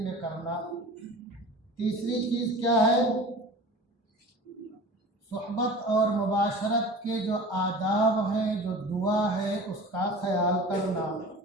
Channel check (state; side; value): normal; both; correlation 0.38